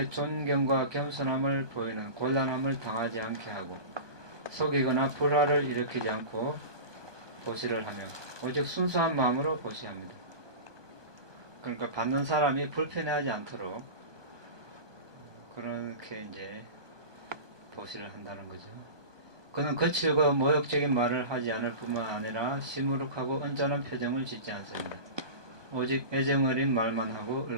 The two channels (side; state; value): left; late; 1.2 ms